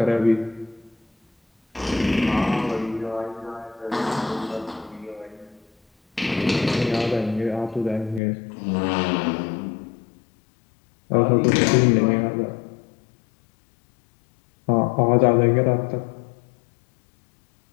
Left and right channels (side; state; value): right; drops out; at 8.2 s